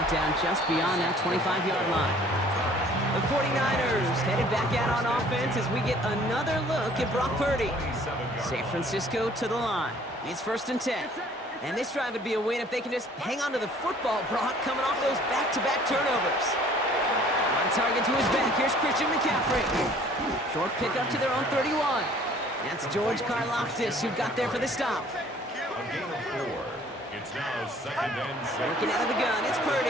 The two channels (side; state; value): both; normal; correlation 0.55